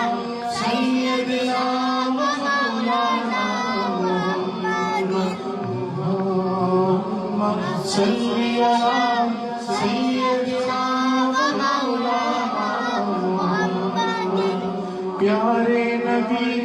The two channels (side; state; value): both; identical; correlation 1.00